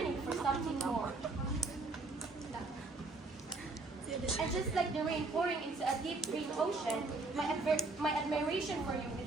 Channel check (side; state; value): left; quieter; 3.4 dB